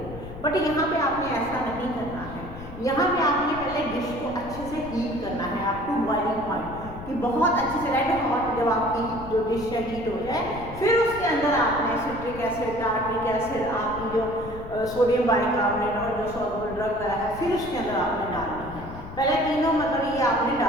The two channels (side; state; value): left; noise; rumble, 13 dB below the sound